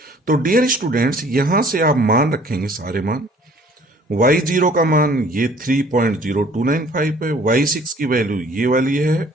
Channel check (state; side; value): normal; both; correlation 0.54